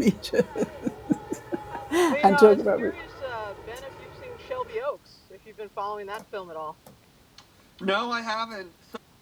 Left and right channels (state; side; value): identical; both; correlation 1.00